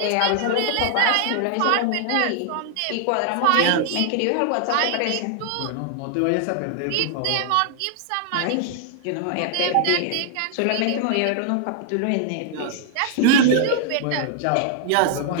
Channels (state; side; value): different; both; correlation 0.00